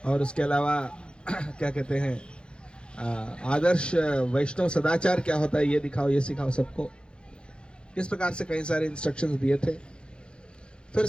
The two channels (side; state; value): right; late; 0.054 ms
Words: और उसके अलावा क्या कहते हैं, आदर्श वैष्णव सदाचार क्या होता है ये दिखाओ, ये सिखाओ सबको। इस प्रकार से कई सारे इंस्ट्रक्शंस दिए थे। फिर